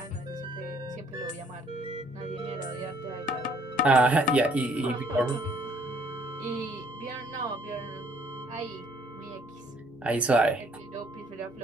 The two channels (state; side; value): normal; both; correlation 0.62